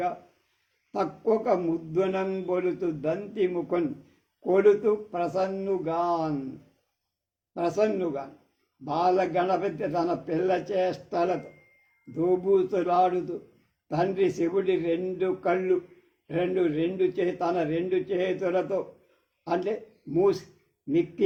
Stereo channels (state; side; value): identical; both; correlation 1.00